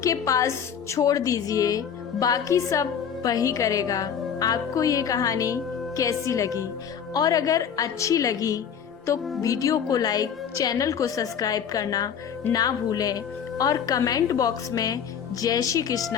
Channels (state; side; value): quieter; right; 7.9 dB